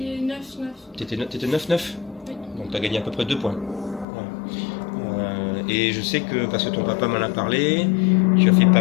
9-9. T'étais 9-9? Oui. Donc tu as gagné à peu près 2 points. Ouais. Et je sais que, parce que ton papa m'en a parlé, tu as fait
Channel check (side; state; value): right; drops out; at 4.0 s